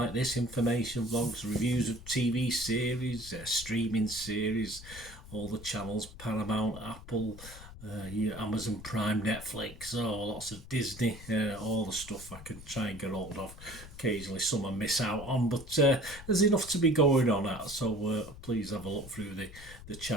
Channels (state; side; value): noise; left; rumble, 15 dB below the sound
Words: this, information vlogs, reviews of TV series, streaming series, all the channels, Paramount, Apple, Amazon Prime, Netflix, lots of Disney, all the stuff I can try and get hold of. Occasionally some I miss out on, but there's enough to be going on at, so please have a look through the